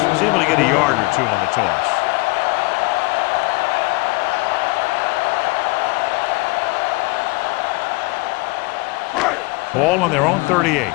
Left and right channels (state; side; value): quieter; right; 25.0 dB